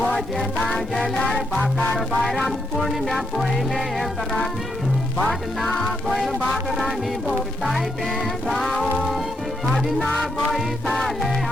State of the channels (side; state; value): both; normal; correlation 0.79